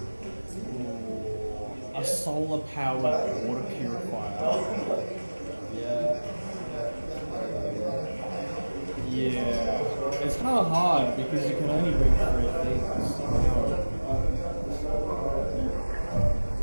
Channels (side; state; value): both; inverted; correlation -1.00